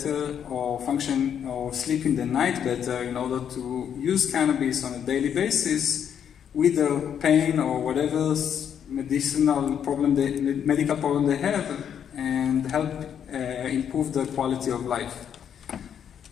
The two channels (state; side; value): quieter; right; 8.6 dB